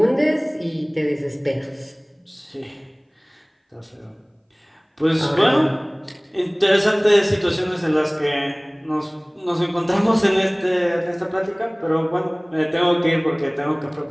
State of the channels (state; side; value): identical; both; correlation 1.00